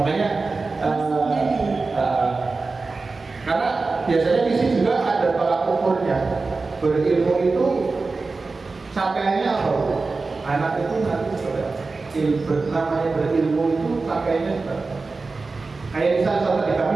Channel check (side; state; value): left; quieter; 3.9 dB